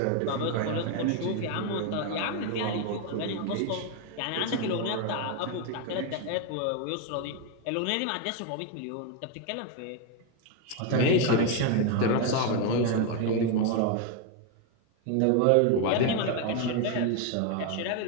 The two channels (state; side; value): different; both; correlation 0.01